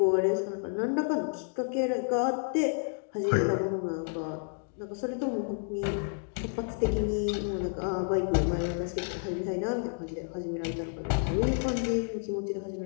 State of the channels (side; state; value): right; silent; 58 dB below the other